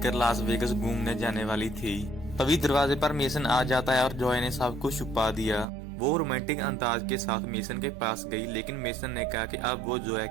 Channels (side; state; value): left; drops out; at 5.7 s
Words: लास वेगस घूमने जाने वाली थी। तभी दरवाजे पर मेसन आ जाता है और जॉय ने सब कुछ छुपा दिया। वो रोमांटिक अंदाज के साथ मेसन के पास गई, लेकिन मेसन ने कहा कि अब वो जोया